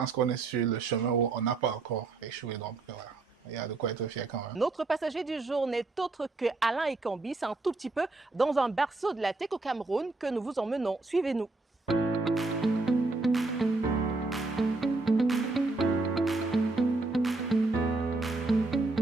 qu'on est sur le chemin où on n'a pas encore échoué. Donc voilà, il y a de quoi être fier quand même. Notre passager du jour n'est autre que Alain Ekambi. C'est un tout petit peu dans un berceau de la tech au Cameroun que nous vous emmenons. Suivez-nous.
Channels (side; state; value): left; quieter; 3.4 dB